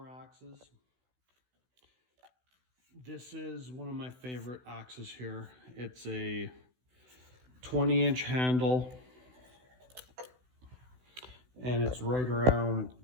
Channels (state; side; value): late; left; 16 ms